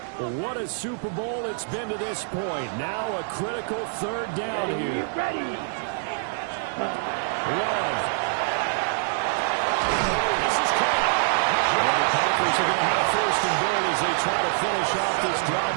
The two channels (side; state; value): left; silent; 62 dB below the other